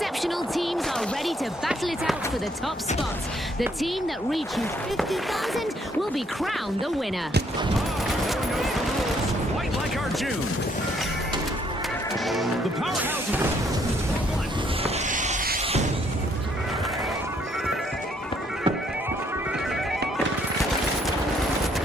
teams are ready to battle it out for the top spot. The team that reaches 50,000 will be crowned the winner. Everyone knows the rules. Quite like our June. The Powerhouses.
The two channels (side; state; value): both; normal; correlation 0.68